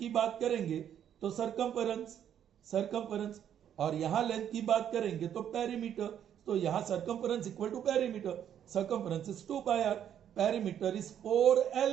बात करेंगे तो सर्कमफरेंस और यहां लेंथ की बात करेंगे तो पेरीमीटर. तो यहां circumference equal to perimeter. Circumference is 2 pi r. Perimeter is 4L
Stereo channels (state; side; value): quieter; left; 9.6 dB